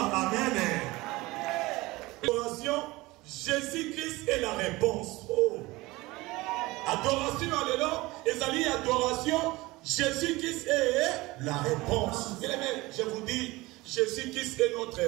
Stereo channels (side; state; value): left; quieter; 20.8 dB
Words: Amen. Adoration. Jésus-Christ est la réponse. Oh. Adoration, alléluia. Et adoration, Jésus-Christ est la réponse. Bien aimé, je vous dis, Jésus-Christ est notre